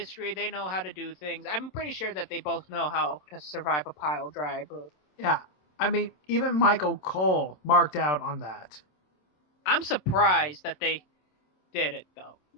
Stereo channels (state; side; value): late; right; 27 ms